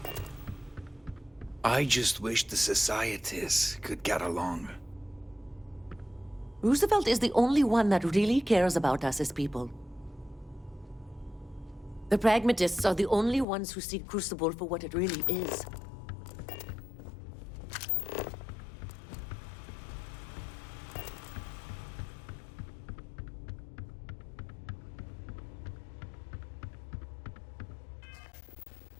I just wish the societies could get along. Roosevelt is the only one that really cares about us as people. The pragmatists are the only ones who see Crucible for what it really is.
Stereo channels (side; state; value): right; drops out; at 13.5 s